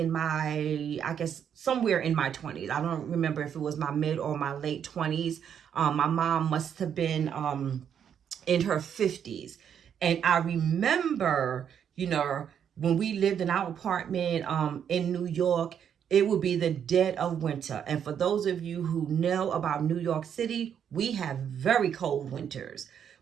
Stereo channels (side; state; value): left; quieter; 8.4 dB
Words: my, I guess somewhere in my 20s. I don't remember if it was my mid or my late 20s. My mom must have been in her 50s. And I remember, when we lived in our apartment in New York, it would be the dead of winter. And for those of you who know about New York City, we have very cold winters.